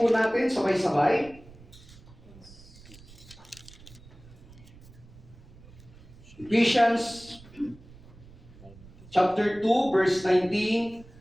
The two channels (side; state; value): right; noise; rumble, 21 dB below the sound